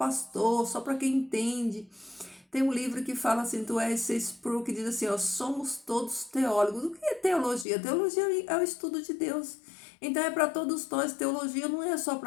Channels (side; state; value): right; drops out; at 7.7 s